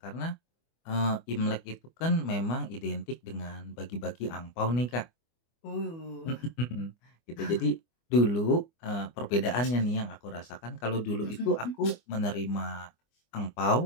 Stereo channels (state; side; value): late; right; 24 ms